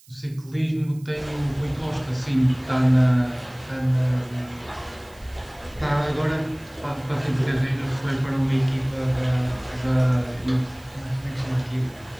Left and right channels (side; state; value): right; noise; hiss, 26 dB below the sound